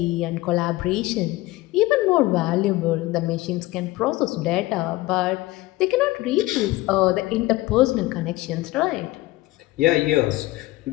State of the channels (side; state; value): right; quieter; 18.7 dB